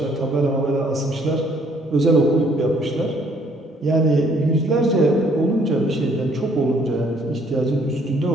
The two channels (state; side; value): normal; both; correlation 0.63